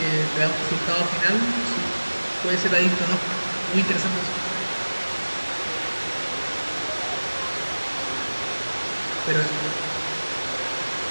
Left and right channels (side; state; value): both; inverted; correlation -1.00